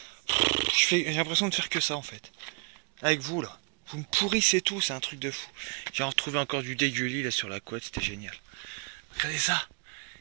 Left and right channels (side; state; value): left; quieter; 38.6 dB